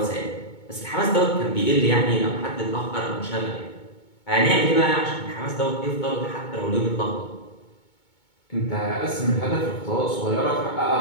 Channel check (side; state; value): right; late; 2.2 ms